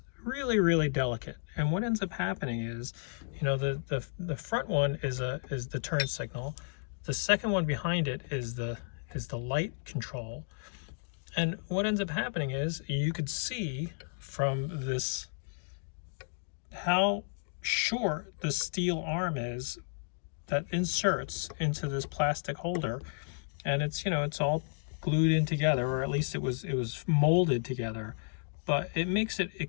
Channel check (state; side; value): silent; right; digital silence